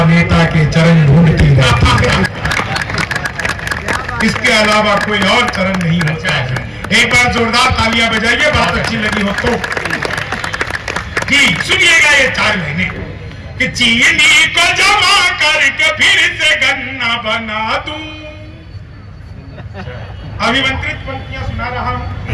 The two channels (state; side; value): identical; both; correlation 1.00